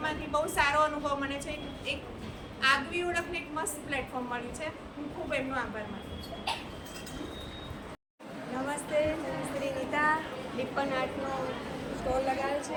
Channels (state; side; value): identical; both; correlation 1.00